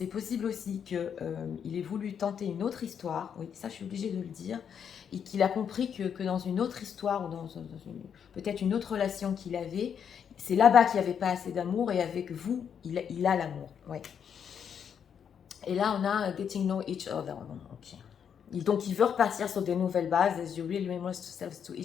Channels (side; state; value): right; quieter; 7.8 dB